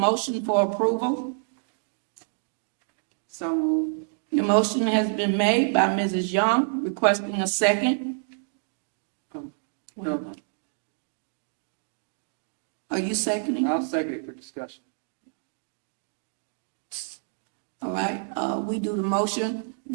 for approval. So moved. The motion has been made by Mrs. Young, requesting a second. Are you seconding? I'll second it for discussion. All right, we do the motion.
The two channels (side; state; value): left; silent; digital silence